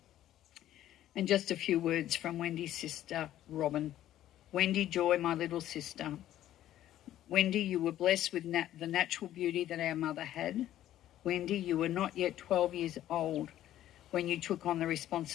And just a few words from Wendy's sister, Robin. Wendy Joy, my little sister. Wendy, you were blessed with the natural beauty that our mother had. Wendy, you were not yet 12 years old when you took on the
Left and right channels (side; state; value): right; quieter; 12.8 dB